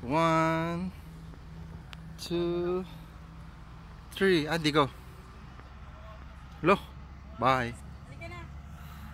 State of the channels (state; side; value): identical; both; correlation 1.00